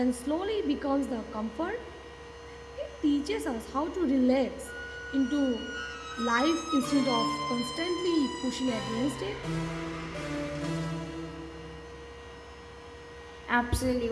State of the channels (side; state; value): both; identical; correlation 1.00